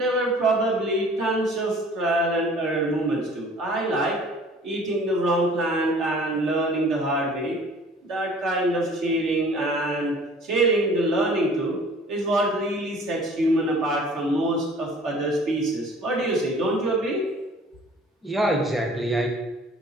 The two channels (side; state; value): both; normal; correlation 0.50